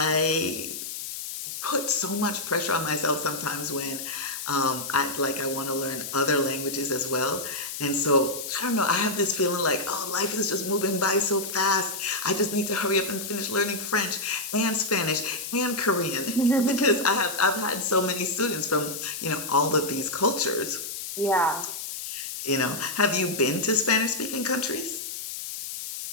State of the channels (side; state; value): left; noise; hiss, 7 dB below the sound